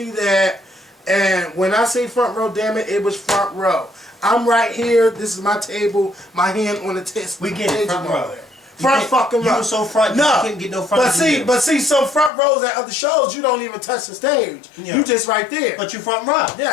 that. And when I say front row, damn it, it was front row. I'm right here. This is my table. My hand on the test. We get it, front row. Front fucking row. You were so front, no. You couldn't get no front. But see, some front rows at other shows, you don't even touch the stage. Yeah. You just right there. But you front row.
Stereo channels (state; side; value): drops out; right; at 12.3 s